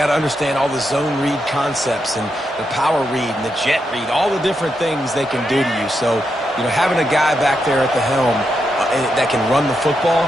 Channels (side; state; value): both; normal; correlation 0.84